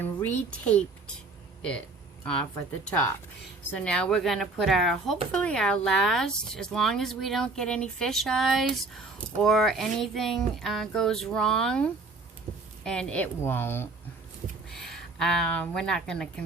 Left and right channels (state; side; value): quieter; left; 3.5 dB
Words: retaped it off at the top. So now we're going to put our, hopefully our last, as long as we don't get any fish eyes or anything goes wrong, and it won't. We're not going to